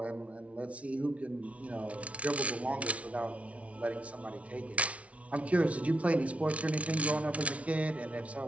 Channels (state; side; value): late; left; 0.064 ms